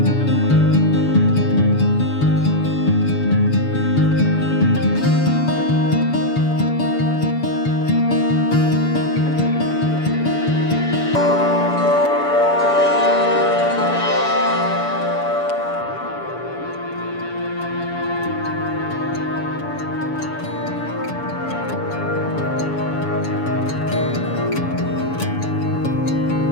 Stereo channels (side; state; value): right; late; 7.0 ms